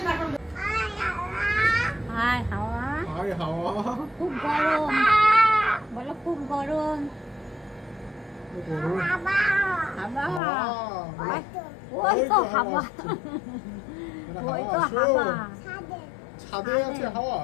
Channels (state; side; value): drops out; right; at 10.4 s